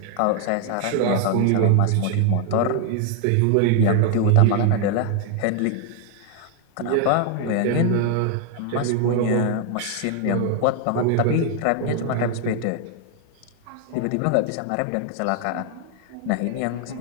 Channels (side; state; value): both; different; correlation 0.00